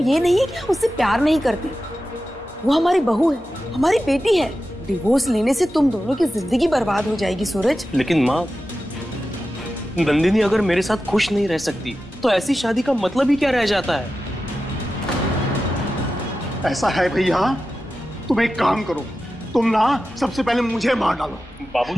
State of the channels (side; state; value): both; normal; correlation 0.93